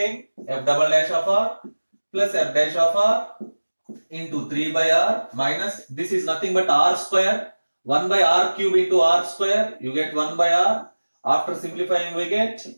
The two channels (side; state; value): both; inverted; correlation -1.00